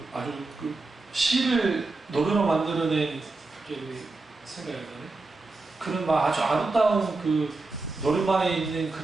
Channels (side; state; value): left; quieter; 3.5 dB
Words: 아주 시를 노래로 만들어낸 생각이 나네. 그런 막 아주 아름다운 노래방에 있는